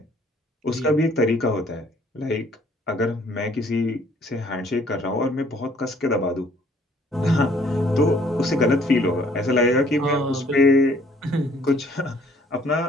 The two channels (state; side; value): normal; both; correlation 0.61